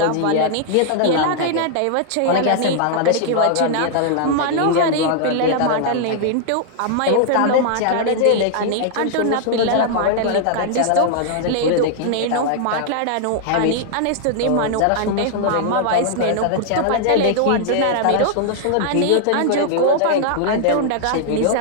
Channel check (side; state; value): both; different; correlation -0.01